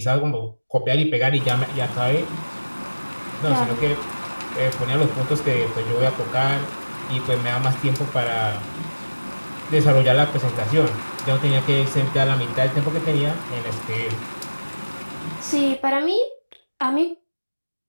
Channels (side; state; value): both; inverted; correlation -1.00